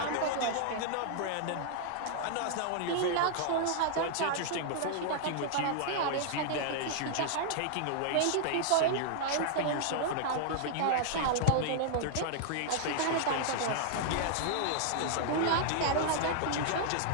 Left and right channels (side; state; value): both; different; correlation -0.01